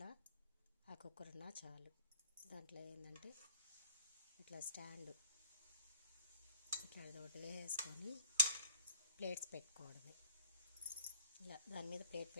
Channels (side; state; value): both; inverted; correlation -0.51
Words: ఆ కుక్కర్ ఉన్నా చాలు. దాంట్లో ఏంటంటే ఇట్లా స్టాండ్ ఇట్లా ఒకటి వేసుకొని ప్లేట్స్ పెట్టుకోవడమే. ఇలా దాని మీద ప్లేట్